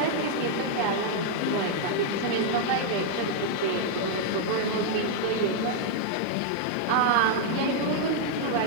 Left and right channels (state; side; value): different; both; correlation -0.01